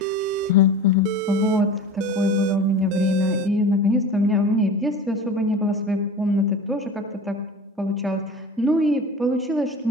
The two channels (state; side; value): normal; both; correlation 0.35